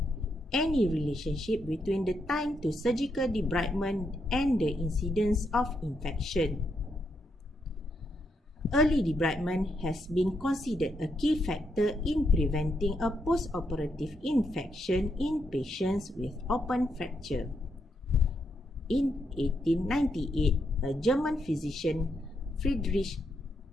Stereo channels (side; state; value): both; normal; correlation 0.80